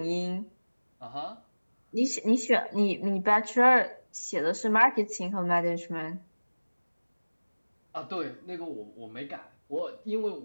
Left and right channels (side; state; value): both; inverted; correlation -1.00